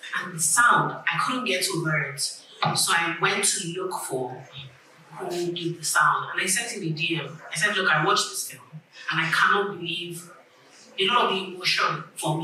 and the sound, I couldn't get over it. So I went to look for who did the sound, and I sent him a DM. I said, look, I watched this film, and I cannot believe a lot of the emotion for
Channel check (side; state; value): both; identical; correlation 1.00